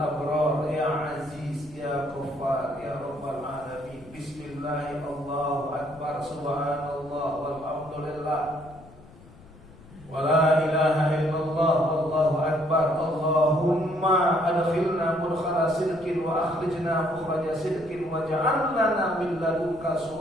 abrar ya aziz ya ghaffar ya rabbal alamin. Bismillah, Allahu akbar, subhanallah, walhamdulillah, wa la ilaha illallah, wallahu akbar. Allahumma adkhilna mudkhala sidqin wa akhrijna mukhraja sidqin wa ja'al lana min ladunka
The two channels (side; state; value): left; noise; rumble, 22 dB below the sound